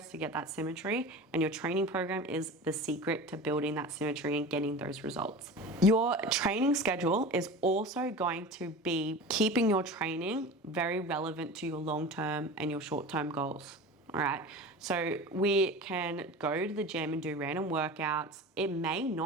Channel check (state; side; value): normal; both; correlation 0.33